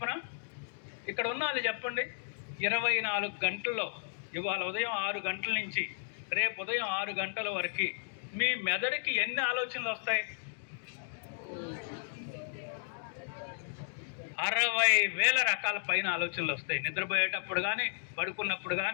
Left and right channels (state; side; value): silent; right; digital silence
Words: ఇక్కడ ఉన్న వాళ్ళు చెప్పండి, 24 గంటల్లో, ఇవాళ ఉదయం 6 గంటల నుంచి రేపు ఉదయం 6 గంటల వరకు మీ మెదడుకి ఎన్ని ఆలోచనలు వస్తాయి? 60,000 రకాల పైన ఆలోచనలు వస్తాయి. నిద్రపోయేటప్పుడు కానీ, పడుకున్నప్పుడు